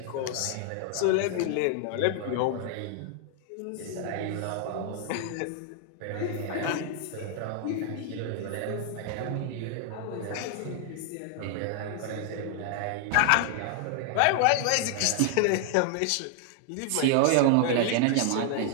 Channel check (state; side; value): different; both; correlation 0.00